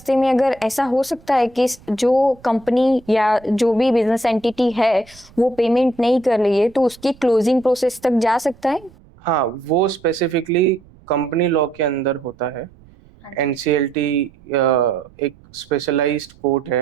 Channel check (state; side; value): noise; right; rumble, 26 dB below the sound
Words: में अगर ऐसा हो सकता है कि जो कंपनी या जो भी बिजनेस एंटिटी है वो पेमेंट नहीं कर रही है, तो उसकी क्लोजिंग प्रोसेस तक जा सकता है? हाँ, वो स्पेसिफिकली कंपनी लॉ के अंदर होता है। एनसीएलटी एक स्पेशलाइज्ड कोर्ट